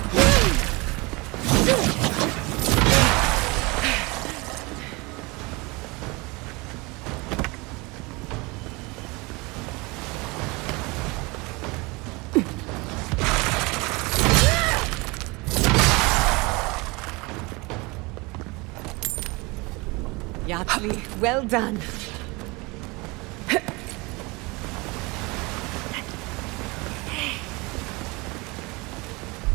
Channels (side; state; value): left; quieter; 25.5 dB